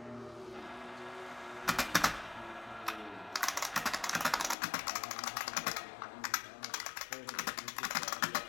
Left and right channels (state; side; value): drops out; right; at 4.5 s